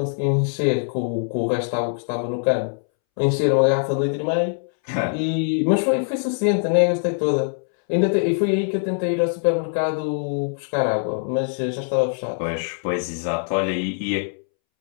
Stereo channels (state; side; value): silent; right; 64 dB below the other